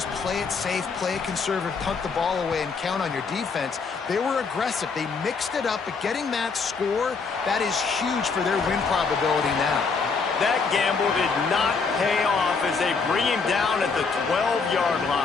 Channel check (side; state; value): right; quieter; 4.9 dB